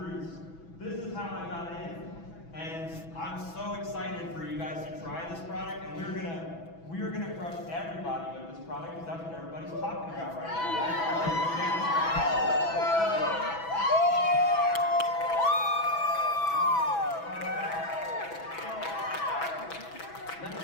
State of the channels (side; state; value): right; late; 6.1 ms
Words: This is how I got in. And I'm so excited for you guys to try this product, and we're gonna crush everybody with this product because that's what everybody's talking about right now. Let me